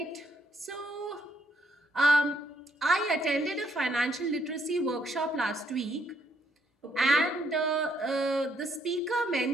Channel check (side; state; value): both; normal; correlation 0.71